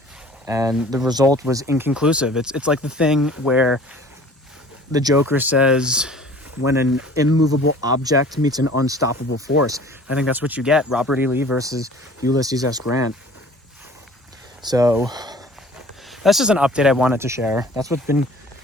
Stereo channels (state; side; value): normal; both; correlation 0.48